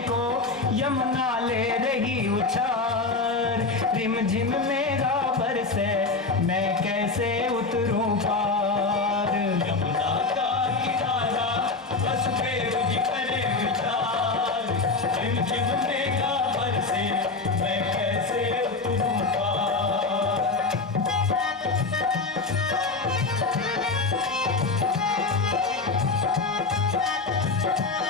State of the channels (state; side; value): quieter; right; 3.8 dB